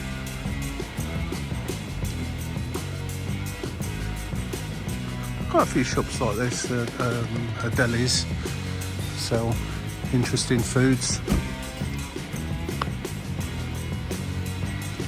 Quite a few shops like this, delis, sell interesting foods.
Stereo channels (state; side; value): identical; both; correlation 1.00